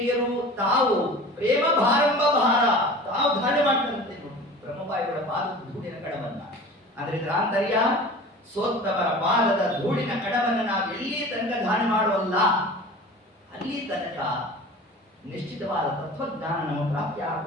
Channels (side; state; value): both; normal; correlation 0.39